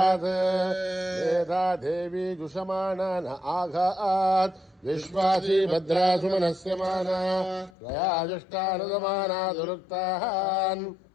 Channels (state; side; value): drops out; right; at 7.8 s